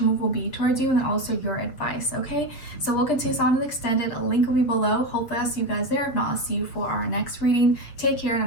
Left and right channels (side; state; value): right; late; 7.6 ms